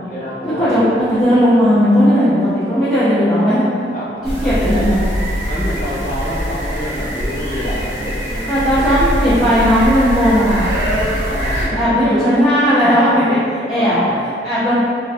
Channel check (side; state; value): both; normal; correlation 0.65